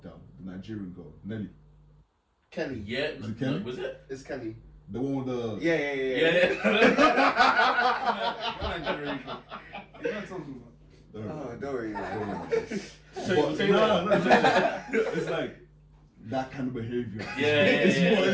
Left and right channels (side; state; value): both; identical; correlation 1.00